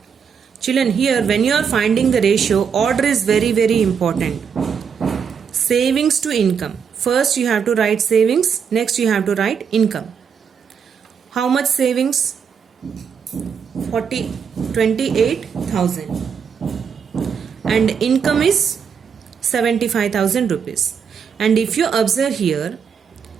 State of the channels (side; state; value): left; quieter; 6.8 dB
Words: Children, here when you are finding the ratio, order is very important. Savings to income. First you have to write savings, next you have to write income. How much savings? 28,000. And income is 75,000 rupees. And if you observe here,